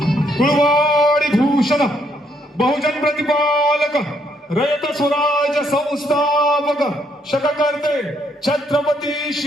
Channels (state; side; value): normal; both; correlation 0.71